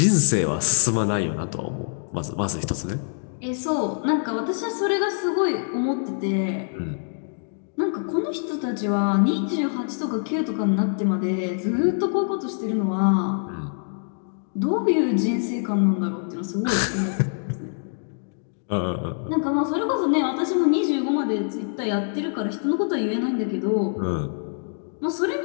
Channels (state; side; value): silent; right; digital silence